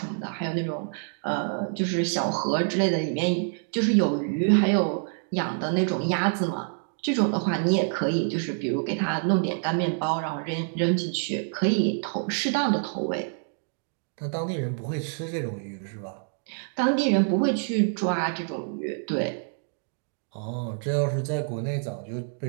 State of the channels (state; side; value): silent; left; digital silence